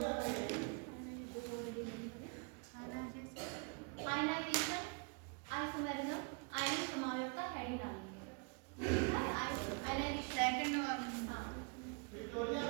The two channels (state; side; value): quieter; left; 35.1 dB